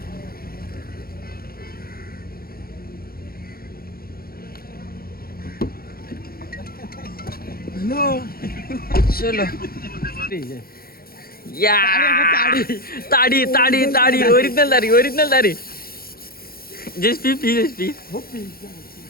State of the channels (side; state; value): right; late; 0.44 ms